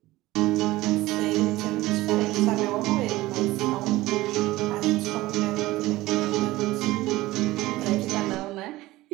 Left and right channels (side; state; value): left; quieter; 18.2 dB